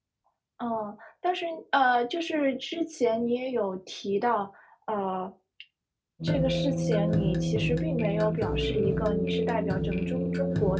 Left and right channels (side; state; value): both; identical; correlation 1.00